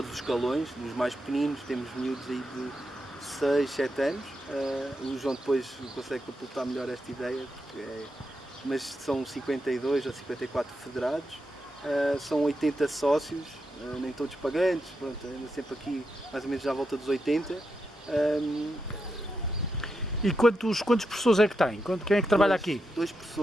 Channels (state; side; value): normal; both; correlation 0.86